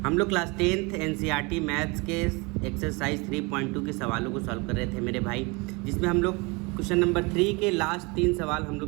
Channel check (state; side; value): quieter; left; 27.7 dB